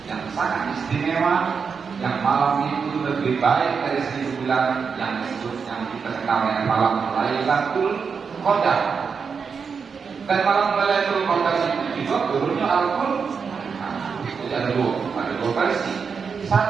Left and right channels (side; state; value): left; quieter; 5.8 dB